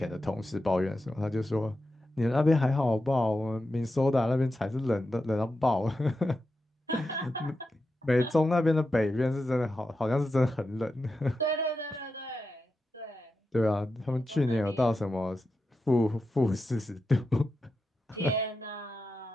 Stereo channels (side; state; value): both; normal; correlation 0.89